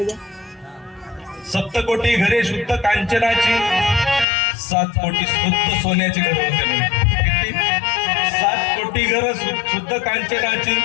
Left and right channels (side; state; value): right; drops out; at 4.2 s